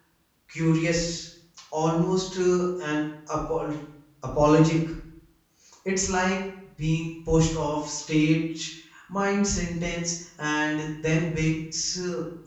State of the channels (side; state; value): both; identical; correlation 1.00